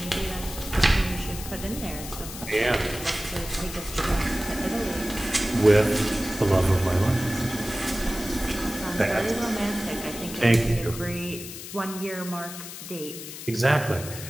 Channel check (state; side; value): noise; left; hiss, 11 dB below the sound